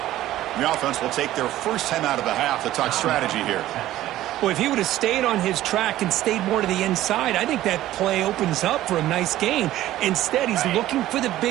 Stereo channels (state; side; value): quieter; left; 14.4 dB